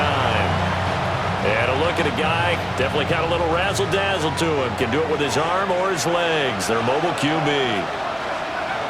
And a look at a guy, definitely got a little razzle-dazzle to him. Can do it with his arm or his legs. Their mobile QB.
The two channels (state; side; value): identical; both; correlation 1.00